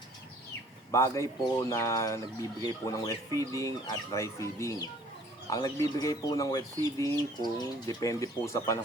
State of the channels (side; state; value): both; normal; correlation 0.55